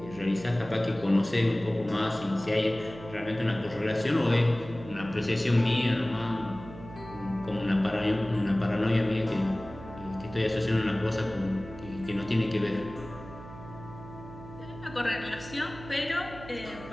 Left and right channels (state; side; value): noise; right; hum, 15 dB below the sound